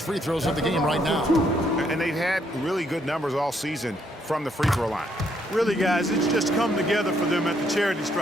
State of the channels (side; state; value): both; normal; correlation 0.72